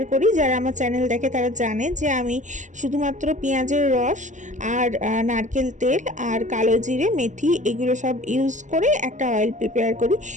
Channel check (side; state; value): left; late; 0.36 ms